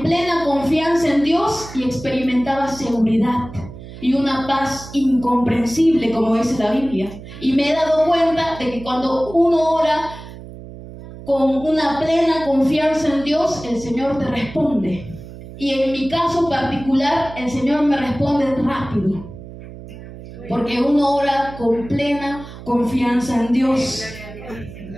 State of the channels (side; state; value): right; noise; hum, 15 dB below the sound